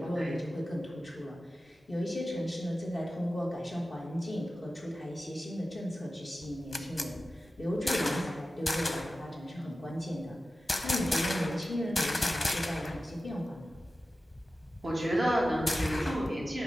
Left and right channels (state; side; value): normal; both; correlation 0.94